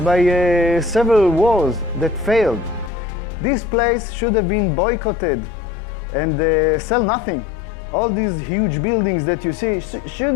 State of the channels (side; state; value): right; drops out; at 2.9 s